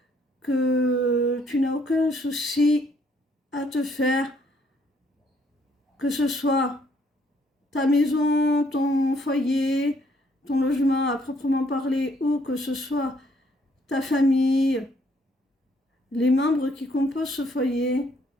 que tu n'as aucun souci à te faire, que ce soit ta maison, ton foyer, ton logement à proprement parler, ou que ce soit ta famille, les membres qui composent ce foyer,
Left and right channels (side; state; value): both; normal; correlation 0.67